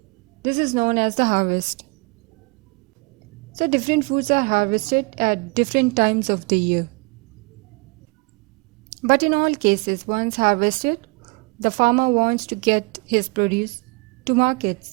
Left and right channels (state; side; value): quieter; left; 30.2 dB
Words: This is known as the harvest. So different foods are harvested at different times of the year. But in all cases, once harvested, the farmer wants to get his produce to